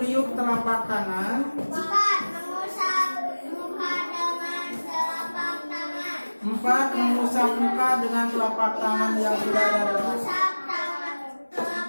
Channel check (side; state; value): both; inverted; correlation -1.00